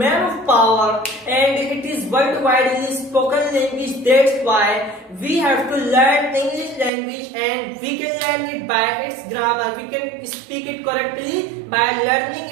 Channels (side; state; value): left; drops out; at 6.9 s